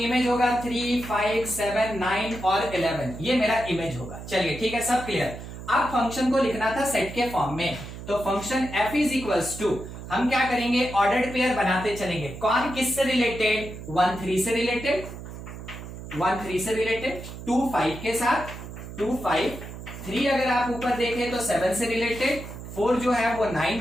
होगा 3, 5, 7, 9 और 11, ये मेरा इमेज होगा। चलिए ठीक है, सब क्लियर। अब फंक्शन को लिखना था सेट के फॉर्म में, तो function f is equals to, हम क्या करेंगे, ऑर्डर्ड पेयर बनाते चलेंगे। कौन किससे रिलेटेड? 1 3 से रिलेटेड, 1 3 से रिलेटेड, 2 5 के साथ, 2 5, 3 अगर आप ऊपर देखें तो 7 से रिलेटेड, 4 जो है वो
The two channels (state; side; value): noise; right; hum, 11 dB below the sound